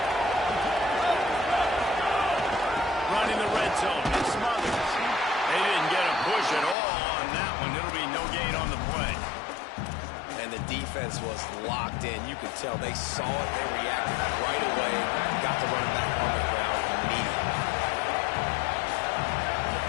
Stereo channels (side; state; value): right; drops out; at 6.8 s